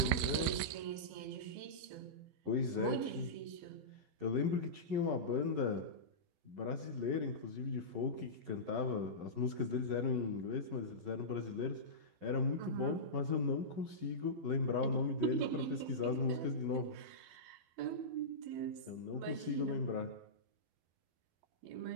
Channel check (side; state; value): left; late; 12 ms